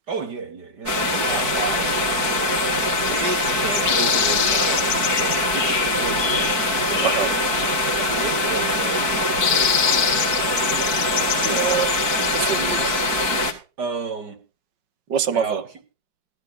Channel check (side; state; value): left; late; 4.6 ms